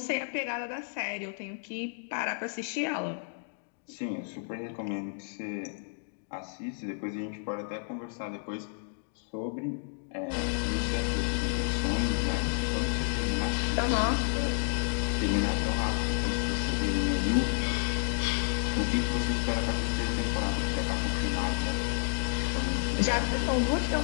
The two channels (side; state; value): right; silent; digital silence